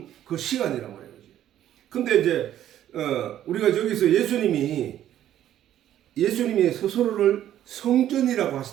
그 시간이란 말이야, 그지? 근데 이제 우리가 여기서 예수님이 스스로를 성전이라고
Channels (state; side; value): quieter; left; 11.7 dB